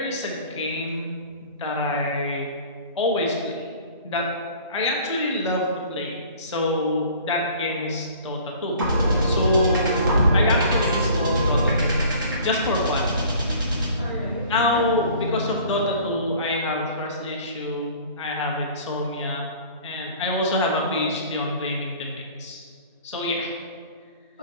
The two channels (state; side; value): inverted; both; correlation -0.47